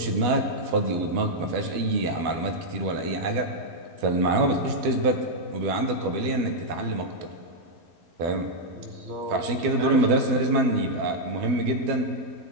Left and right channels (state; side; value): late; left; 12 ms